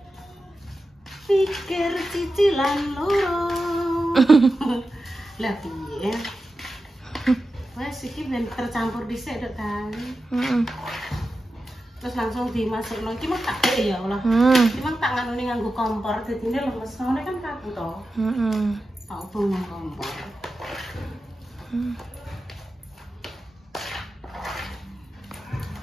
pikir cicilan loro. Lah piye? Wes iki ben tercampur dhisik dok kan. Terus langsung dimasukno iki mah tak dek ya Allah. Iki mah tak nganune nganggo kompor dadine lemes ngene kan kaku to. Tak obong nang kompor.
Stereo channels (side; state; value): both; normal; correlation 0.92